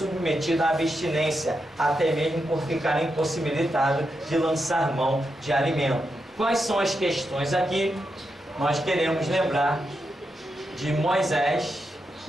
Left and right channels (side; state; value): both; normal; correlation 0.86